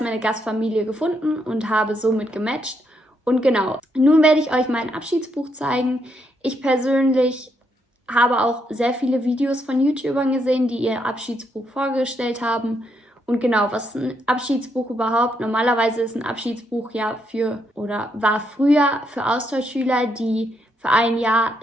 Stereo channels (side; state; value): both; normal; correlation 0.77